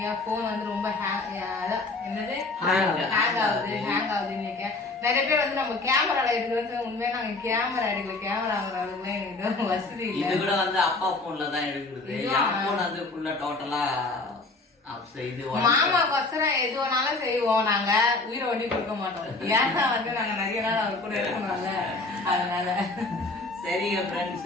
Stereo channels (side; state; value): right; quieter; 3.3 dB